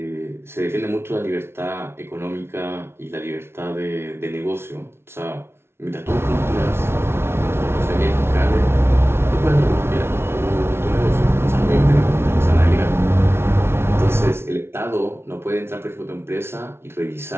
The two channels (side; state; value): left; late; 0.12 ms